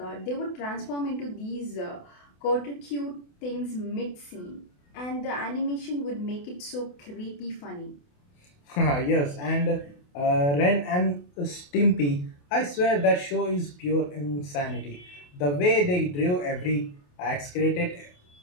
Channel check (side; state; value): right; late; 28 ms